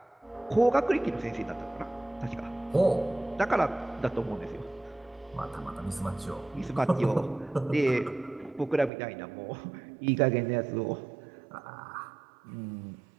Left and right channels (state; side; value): drops out; left; at 8.9 s